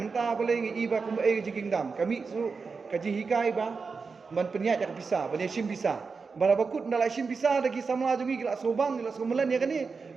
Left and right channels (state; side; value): quieter; left; 4.8 dB